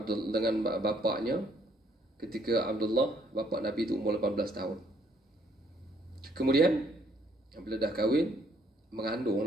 bapaknya ketika Abdullah, bapa Nabi itu umur 18 tahun. Kemudian bila dah kahwin,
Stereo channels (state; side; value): normal; both; correlation 0.66